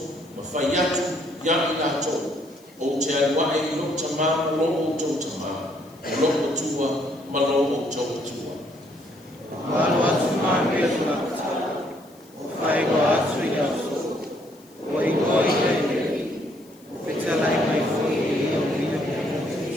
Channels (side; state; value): left; noise; hiss, 28 dB below the sound